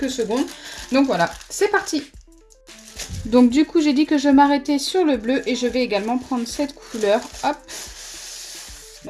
secondes. Donc voilà, c'est parti! Donc du coup, j'ai dit que je m'arrêtais sur le bleu et je vais également prendre cette couleur. Hop.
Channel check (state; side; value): identical; both; correlation 1.00